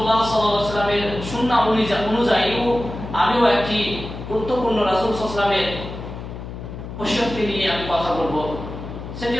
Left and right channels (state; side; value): noise; left; hum, 10 dB below the sound